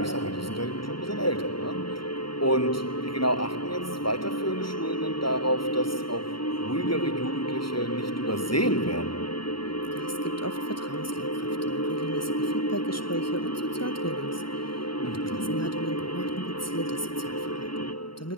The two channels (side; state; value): right; late; 0.73 ms